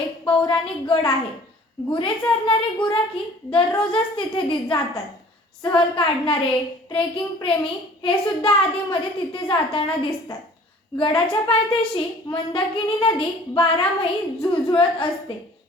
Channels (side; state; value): both; normal; correlation 0.50